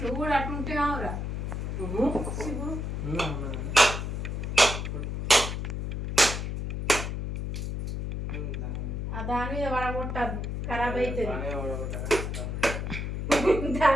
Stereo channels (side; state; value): left; noise; hum, 3 dB below the sound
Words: నువ్వు కూడా అట్లుంటే కావురా దాని మీద పడగొట్టద్దు, ఖరాబ్ అవుతుంది.